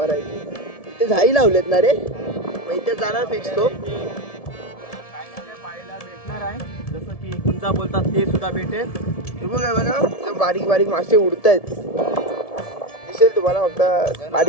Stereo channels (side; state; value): right; late; 1.7 ms